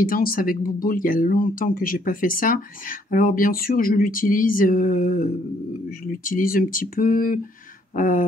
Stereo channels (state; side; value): normal; both; correlation 0.67